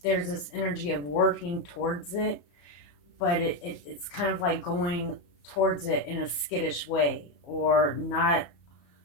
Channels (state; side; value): late; right; 34 ms